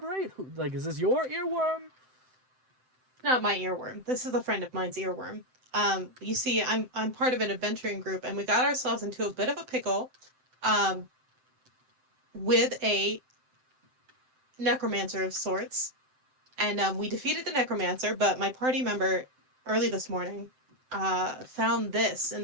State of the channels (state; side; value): late; left; 7.8 ms